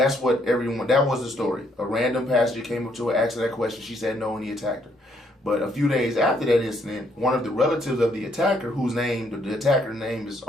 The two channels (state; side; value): normal; both; correlation 0.70